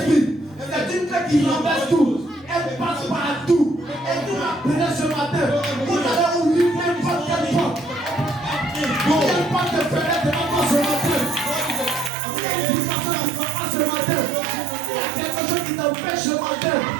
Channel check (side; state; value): left; drops out; at 12.1 s